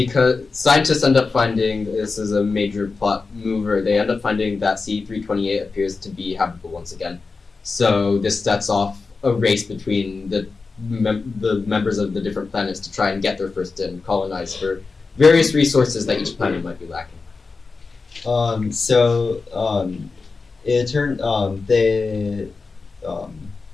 scientists end up finding, this is a major plot mover, they end up finding that C328 appears to be habitable once again. So this sets off a race between the the members of the different planets to try and get there first and colonize for various resources that each planet might be lacking. It turned they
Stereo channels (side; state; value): right; quieter; 4.3 dB